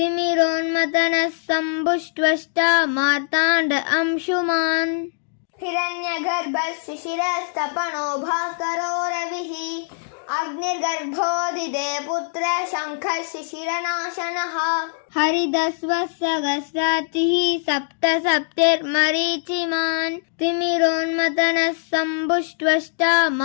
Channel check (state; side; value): silent; right; digital silence